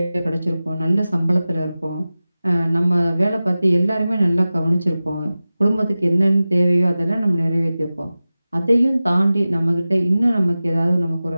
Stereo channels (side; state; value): both; inverted; correlation -0.96